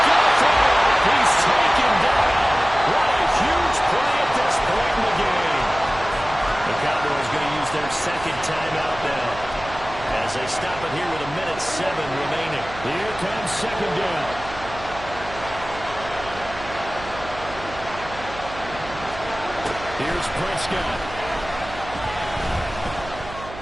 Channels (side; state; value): right; noise; hum, 14 dB below the sound